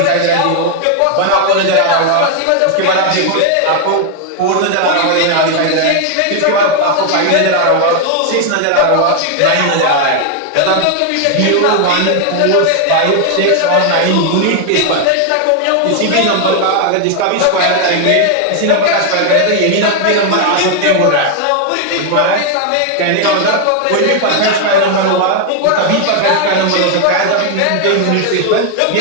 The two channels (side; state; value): both; different; correlation 0.01